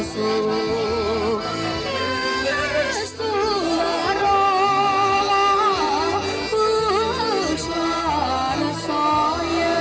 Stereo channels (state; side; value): identical; both; correlation 1.00